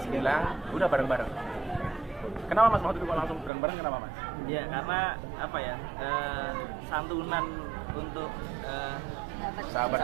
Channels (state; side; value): drops out; left; at 3.5 s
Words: bilang, udah bareng-bareng. Kenapa Mas waktu itu kok langsung bareng-bareng, kenapa Mas? Ya karena apa ya, santunan untuk